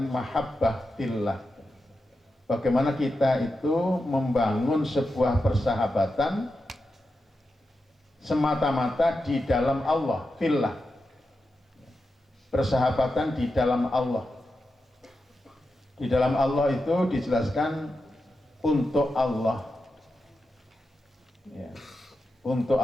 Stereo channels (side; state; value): both; normal; correlation 0.89